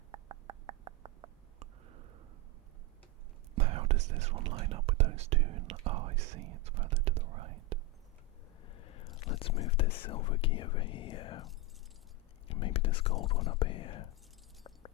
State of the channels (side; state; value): both; normal; correlation 0.07